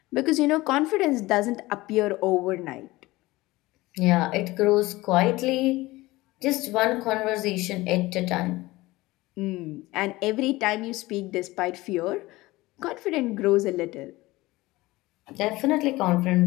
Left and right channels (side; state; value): right; quieter; 19.7 dB